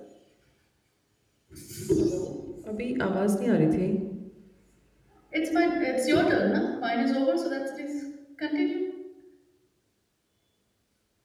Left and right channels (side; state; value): both; identical; correlation 1.00